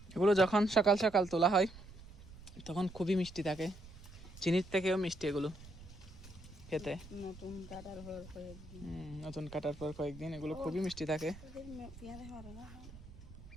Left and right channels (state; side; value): noise; right; rumble, 17 dB below the sound